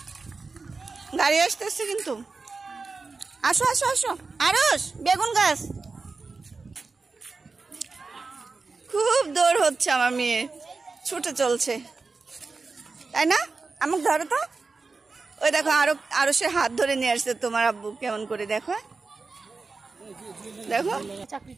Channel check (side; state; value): left; quieter; 4.1 dB